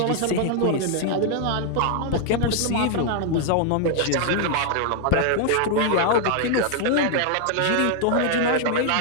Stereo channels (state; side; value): different; both; correlation 0.00